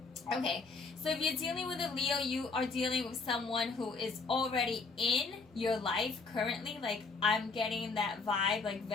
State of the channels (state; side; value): quieter; right; 4.2 dB